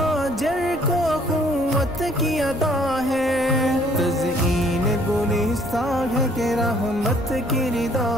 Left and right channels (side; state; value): left; noise; rumble, 16 dB below the sound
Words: کو اخوت کی ادا ہے، تزئین گلستان ہے کہ رحمت کی